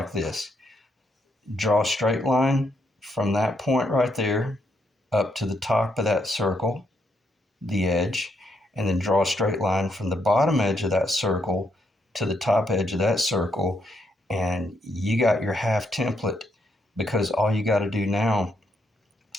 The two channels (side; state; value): both; normal; correlation 0.76